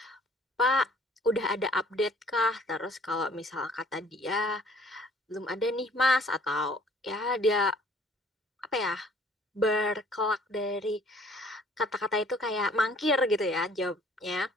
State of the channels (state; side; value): normal; both; correlation 0.57